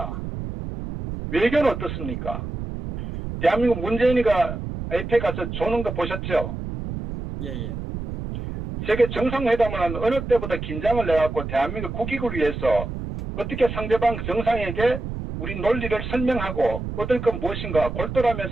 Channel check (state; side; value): noise; right; rumble, 6 dB below the sound